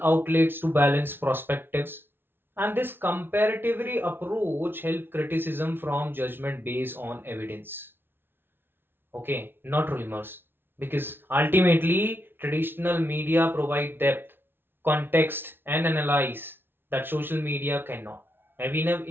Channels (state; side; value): late; left; 0.11 ms